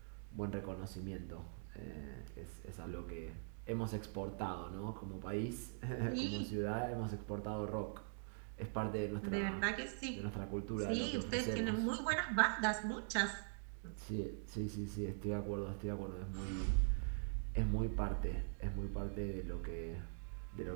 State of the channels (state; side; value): silent; left; digital silence